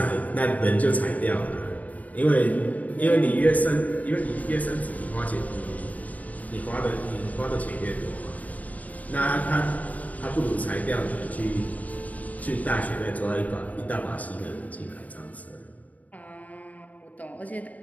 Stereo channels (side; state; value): right; late; 0.072 ms